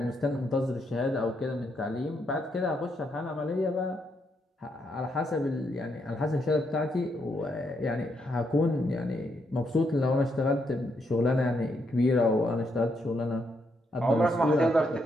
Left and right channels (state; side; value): normal; both; correlation 0.77